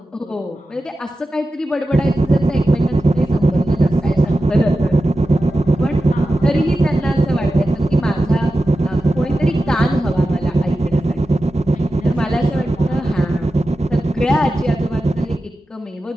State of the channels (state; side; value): normal; both; correlation 0.92